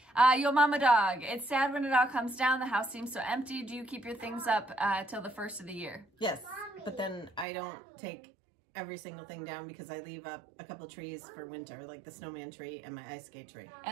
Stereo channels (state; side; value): drops out; left; at 7.5 s